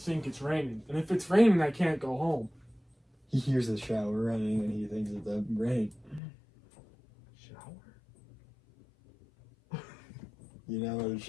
it's raining. And if it's raining, I can't go home. He hears the shower running and he thinks it's a rain. Shower? You know what a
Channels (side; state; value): right; drops out; at 6.2 s